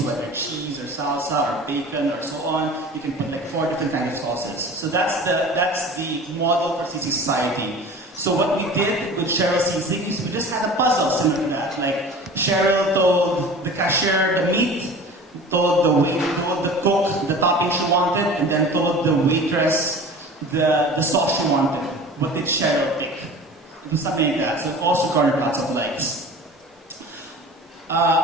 whether cheese or salsa or bacon or so on. You can put like 4 different kinds of sauces. So that's the model for Sisig Society. So what we did with Cheryl Sisig is we just had a puzzle similar to that. Like Cheryl told the cashier the meat, told the cook the topping she wanted, and then told the waitress the sauce she wanted. What did Cheryl pick? It was something like that. So it also garnered lots of likes.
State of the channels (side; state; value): both; normal; correlation 0.40